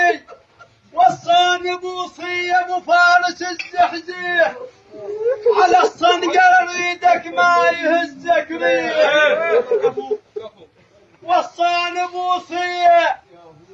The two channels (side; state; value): both; identical; correlation 1.00